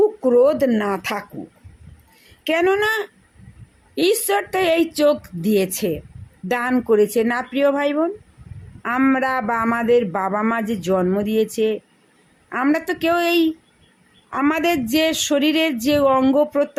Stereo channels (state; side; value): identical; both; correlation 1.00